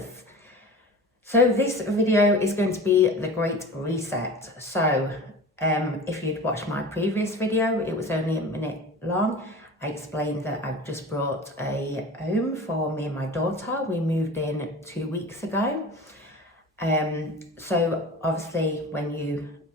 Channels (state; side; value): normal; both; correlation 0.36